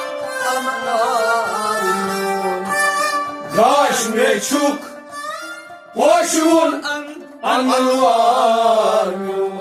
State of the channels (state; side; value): identical; both; correlation 1.00